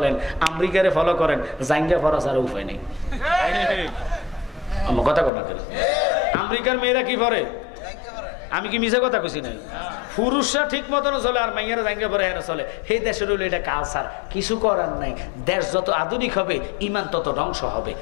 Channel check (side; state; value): right; drops out; at 5.3 s